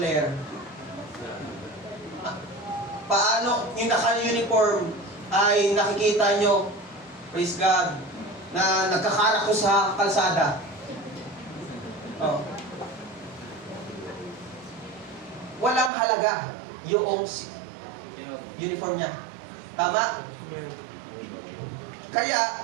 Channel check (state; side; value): drops out; left; at 15.9 s